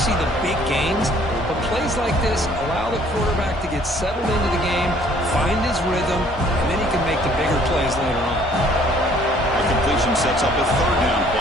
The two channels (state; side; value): normal; both; correlation 0.59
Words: the big gains, but plays like this allow the quarterback to get settled into the game, find his rhythm, and then he can make the bigger plays later on. A completion sets up a 3rd down